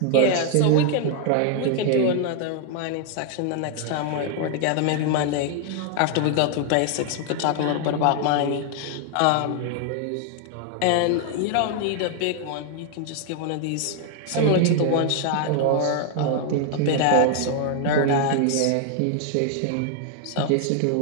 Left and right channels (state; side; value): different; both; correlation 0.00